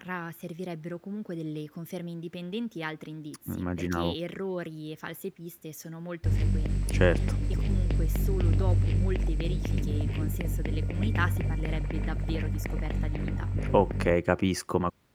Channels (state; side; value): identical; both; correlation 1.00